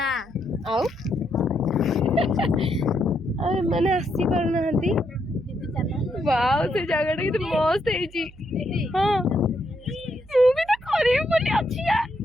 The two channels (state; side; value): noise; right; hum, 22 dB below the sound